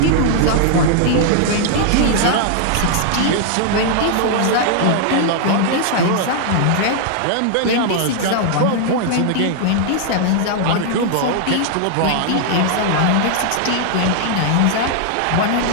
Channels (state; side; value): different; both; correlation -0.01